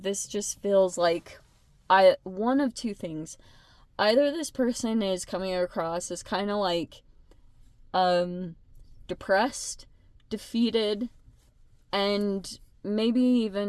This just feels like one of two things. Either this person is coming across as kind of like depressed, defeated, and maybe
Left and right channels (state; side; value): identical; both; correlation 1.00